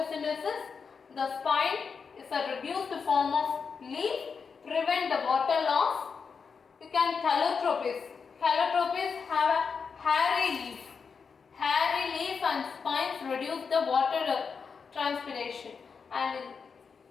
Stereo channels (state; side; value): quieter; right; 5.7 dB